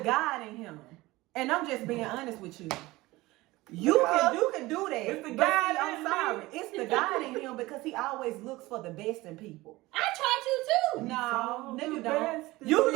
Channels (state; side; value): quieter; left; 19.7 dB